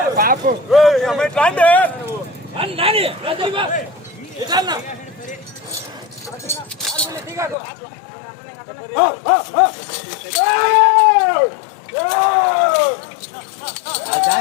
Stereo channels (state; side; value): drops out; right; at 7.6 s